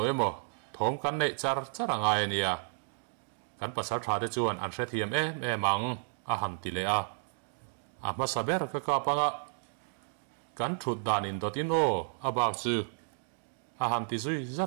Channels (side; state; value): left; silent; digital silence